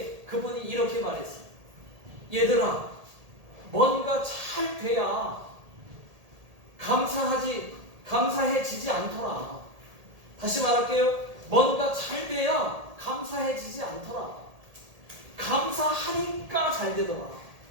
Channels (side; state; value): left; late; 1.8 ms